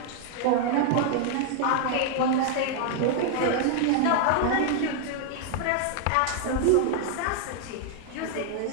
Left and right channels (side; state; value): both; different; correlation 0.00